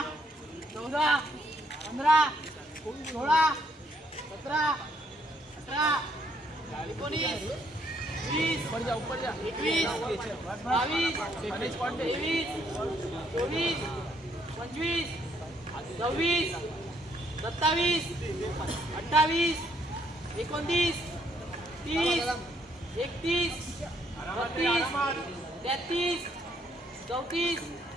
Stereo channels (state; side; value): normal; both; correlation 0.70